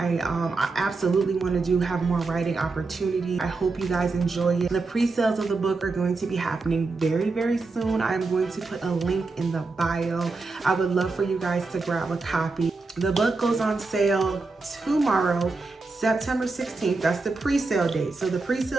absolutely want to have more writing opportunity. I hope you guys enjoy it. The pre-sales of the book are going to be happening very, very soon. I'm going to put a link in the bio. I would love for you guys to grab a copy. The book goes on sale tomorrow, September 16th. That's the pre-sale date. So the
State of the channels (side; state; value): left; quieter; 3.8 dB